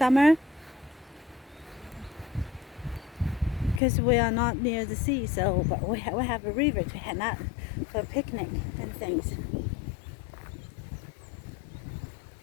because we are not near the sea, so but we have a river to head out for a picnic and things.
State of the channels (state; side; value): drops out; right; at 3.8 s